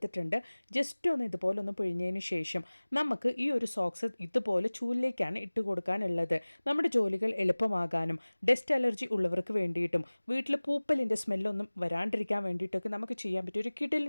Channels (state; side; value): inverted; both; correlation -1.00